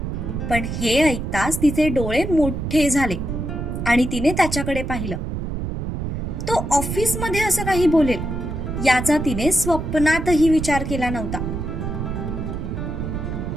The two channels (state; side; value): noise; right; rumble, 4 dB below the sound